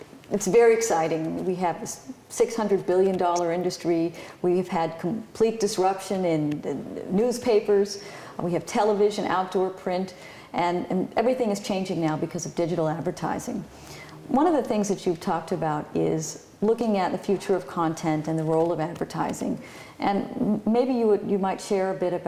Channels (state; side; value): identical; both; correlation 1.00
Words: it's very exciting. We have this $600 billion industry. We've had complete disruption in newspapers. We have television, outdoor print, and everything is changing now because of digital advertising. One of the things that you've talked about is looking at the future of content and the role of advertising. And maybe you might share a bit